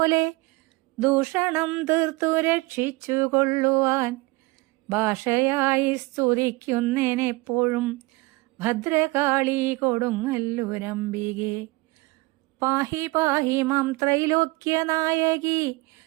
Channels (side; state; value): left; quieter; 23.1 dB